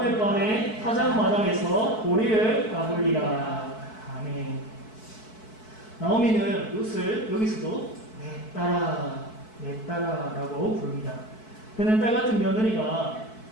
밤에 타작마당에서 보리를 까불리라. 아멘. 나오미는 룻을 여기서도 내 딸아 라고 부릅니다. 그는 딸 같은 며느리가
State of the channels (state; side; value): late; right; 4.6 ms